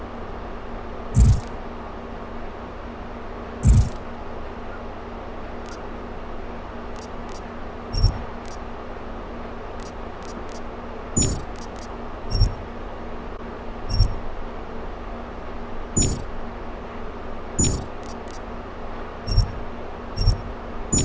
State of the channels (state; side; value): identical; both; correlation 1.00